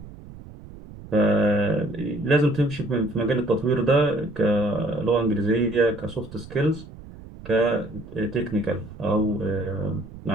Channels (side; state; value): right; noise; rumble, 16 dB below the sound